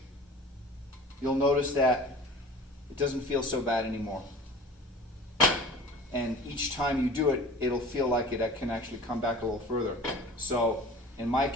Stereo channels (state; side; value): normal; both; correlation 0.42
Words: you'll notice that it doesn't feel so bad anymore. And each time you do it, it'll feel like it can actually come back a little further. So in my